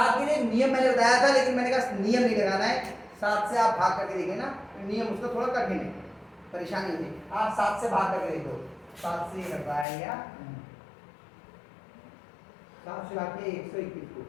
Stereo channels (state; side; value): drops out; right; at 9.9 s